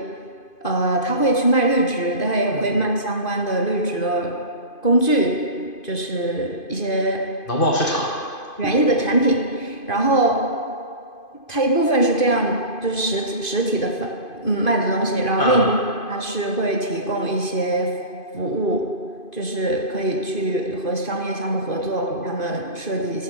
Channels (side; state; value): right; late; 2.5 ms